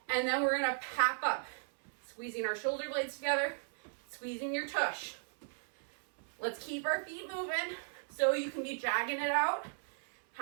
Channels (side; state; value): left; silent; 54 dB below the other